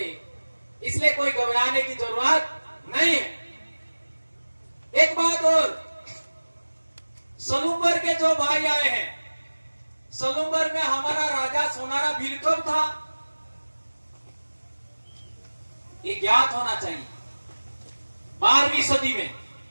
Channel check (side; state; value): both; inverted; correlation -1.00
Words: इसलिए कोई घबराने की जरूरत नहीं है। एक बात और, सलूम्बर के जो भाई आए हैं, सलूम्बर में हमारा राजा सोनारा भील कब था, ये ज्ञात होना चाहिए। 12वीं सदी में।